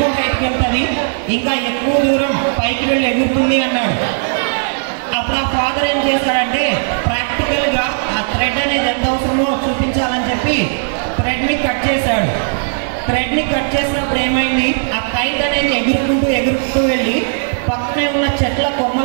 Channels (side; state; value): left; silent; 60 dB below the other